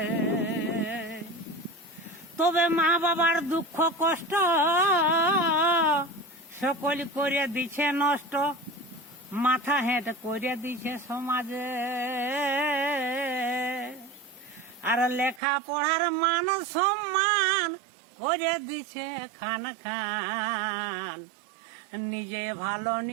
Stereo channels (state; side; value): drops out; left; at 15.4 s